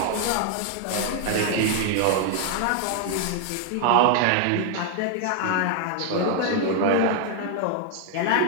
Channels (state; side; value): different; both; correlation 0.00